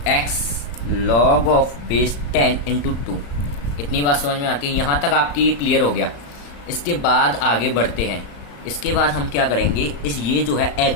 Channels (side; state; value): right; late; 35 ms